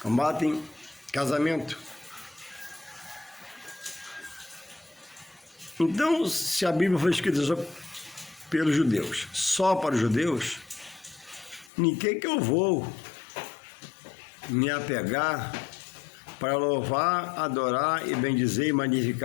combatem casamento. Então, se a Bíblia foi escrita só pelos judeus, só para os judeus, em que eu vou me apegar para louvar, adorar e bendizer e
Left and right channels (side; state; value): right; drops out; at 11.7 s